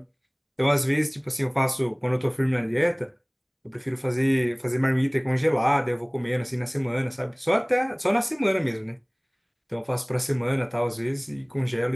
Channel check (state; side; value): identical; both; correlation 1.00